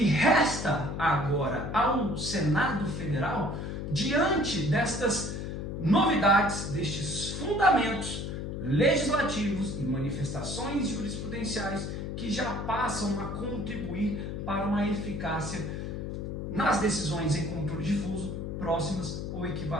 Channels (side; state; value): left; noise; hum, 5 dB below the sound